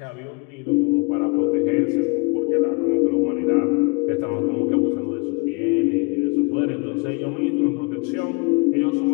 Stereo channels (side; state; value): right; quieter; 29.3 dB